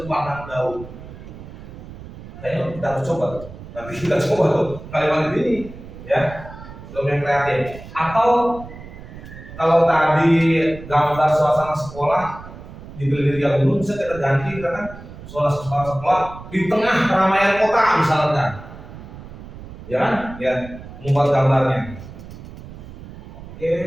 pandang daun. Kayaknya kita harus coba tuh. Nanti kita coba tuh kalimat ini, ya. Prompt yang kreatif. Atau kalau tadi gambar suasana sekolah dibeli di gunung, bisa kita ganti kan suasana sekolah di tengah keramaian kota misalkan, ya kan? Ya, membuat gambarnya. Oke.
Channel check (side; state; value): right; noise; rumble, 15 dB below the sound